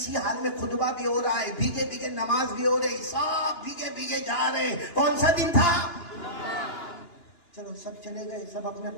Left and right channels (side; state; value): right; late; 2.9 ms